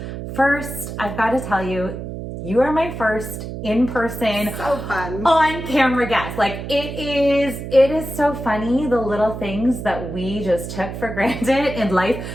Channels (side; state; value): right; noise; hum, 8 dB below the sound